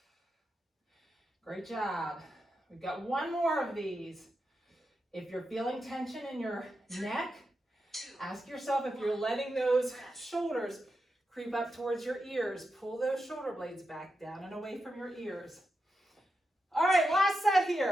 Great job. We've got 1 more of these. If you're feeling tension in your neck, 2, ask yourself if you're letting those shoulders creep up towards your ears. Pull those shoulder blades back down and away from your ears. All right, last set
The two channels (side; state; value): both; normal; correlation 0.87